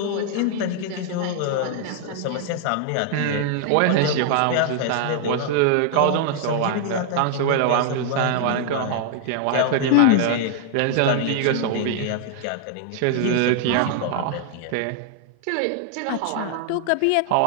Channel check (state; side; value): different; both; correlation -0.01